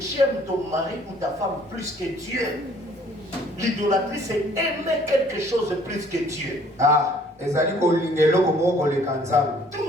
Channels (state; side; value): normal; both; correlation 0.58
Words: aimes ton mari ou ta femme plus que Dieu. L'idolâtrie, c'est aimer quelque chose de plus que Dieu. Ah. Tout